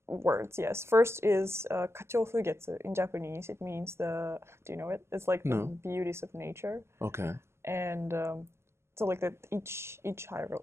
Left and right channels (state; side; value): late; left; 0.13 ms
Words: Words, yes. First is kachofugetsu in Japanese. It means do you know it? It's like the beauties of nature. Okay. And so like that each